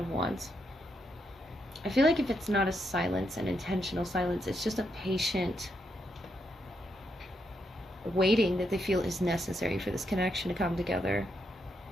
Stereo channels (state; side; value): normal; both; correlation 0.80